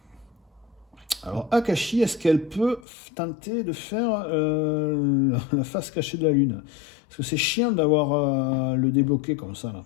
Alors Akashi, est-ce qu'elle peut tenter de faire la face cachée de la lune? Parce que c'est chiant d'avoir le débloqué comme ça là.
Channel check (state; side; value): drops out; right; at 2.9 s